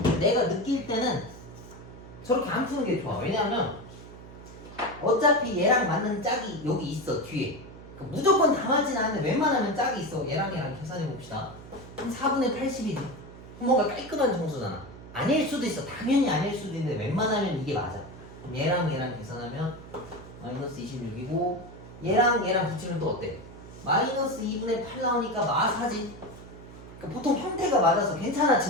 내가 느낄 때는 저렇게 안 푸는 게 좋아. 왜냐하면 어차피 얘랑 맞는 짝이 여기 있어. 뒤에. 그러니까 무조건 다 맞진 않는데 웬만하면 짝이 있어. 얘랑 계산해 봅시다. 한 4분의 80이지. 뭔가 깔끔한 정수잖아. 아닐 수도 있어. 당연히 아닐 수도 있는데 웬만하면 이게 맞아. 그럼 얘랑 계산하면 마이너스 26이고 얘랑 붙이면 또 어때? 마이너스 2분의 8 나오니까 마사지. 그러니까 보통 형태가 맞아서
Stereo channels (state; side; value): noise; right; hum, 16 dB below the sound